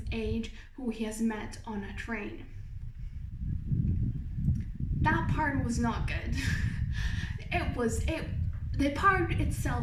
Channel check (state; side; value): identical; both; correlation 1.00